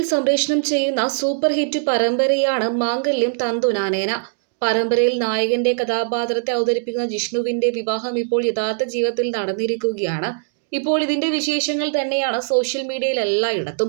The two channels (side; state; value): left; silent; digital silence